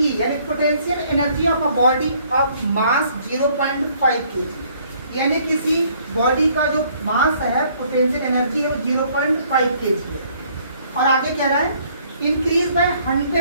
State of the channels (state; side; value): inverted; both; correlation -0.62